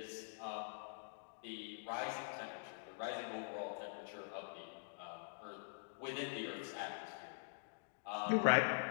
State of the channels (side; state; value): right; silent; digital silence